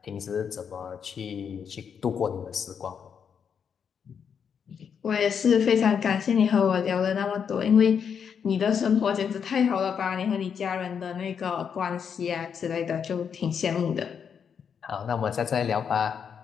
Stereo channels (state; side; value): quieter; right; 7.2 dB